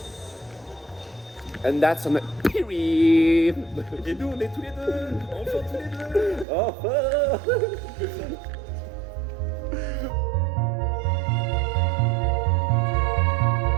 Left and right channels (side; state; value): left; drops out; at 6.5 s